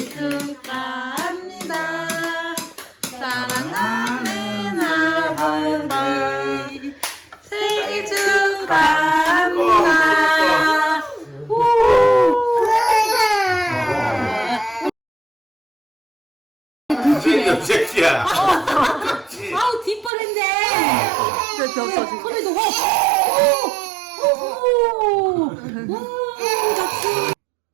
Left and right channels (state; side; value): drops out; left; at 20.1 s